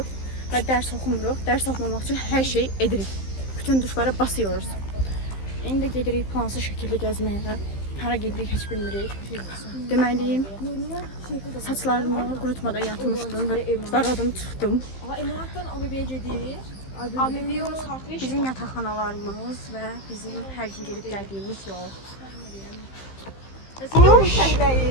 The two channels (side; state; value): right; late; 15 ms